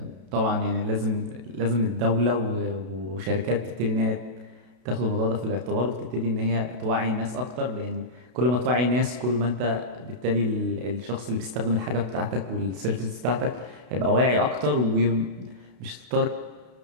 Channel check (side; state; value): left; late; 32 ms